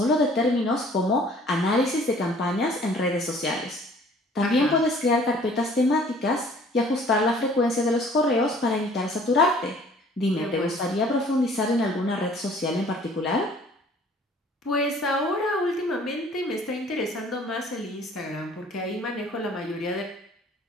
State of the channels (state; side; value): normal; both; correlation 0.54